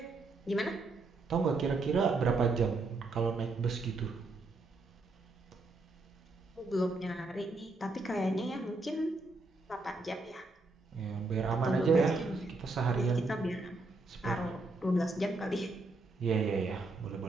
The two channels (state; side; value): quieter; left; 3.2 dB